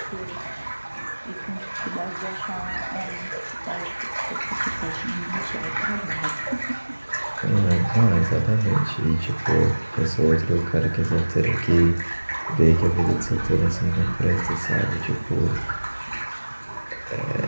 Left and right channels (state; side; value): inverted; both; correlation -1.00